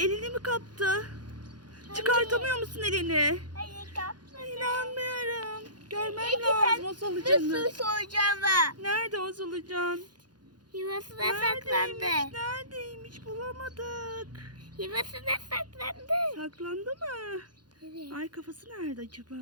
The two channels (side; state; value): left; late; 0.70 ms